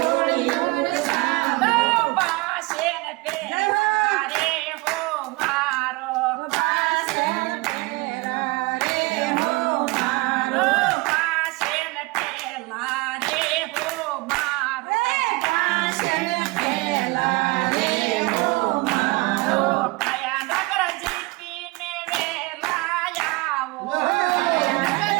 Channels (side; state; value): left; quieter; 24.3 dB